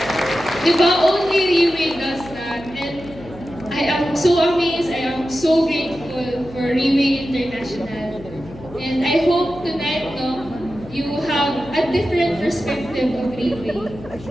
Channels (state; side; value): noise; left; hum, 17 dB below the sound